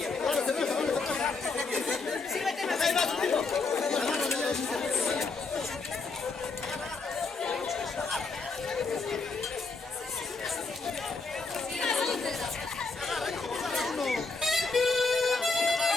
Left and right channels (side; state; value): right; quieter; 4.0 dB